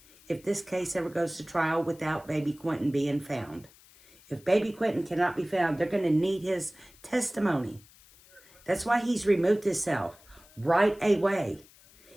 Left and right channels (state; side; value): noise; left; hiss, 26 dB below the sound